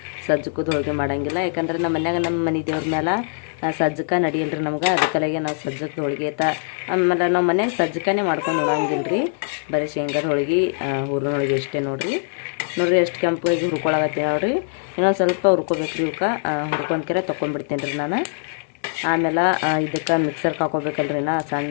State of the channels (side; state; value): right; silent; digital silence